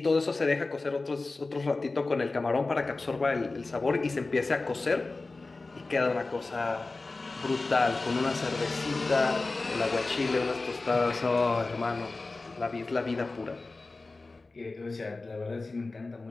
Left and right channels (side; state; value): right; quieter; 3.5 dB